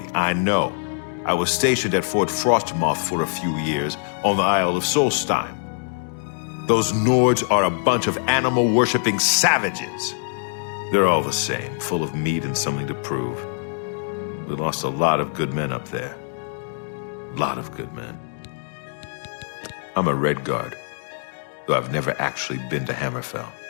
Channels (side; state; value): right; silent; digital silence